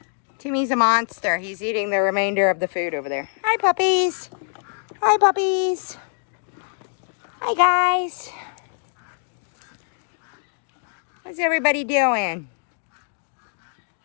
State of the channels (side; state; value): right; silent; digital silence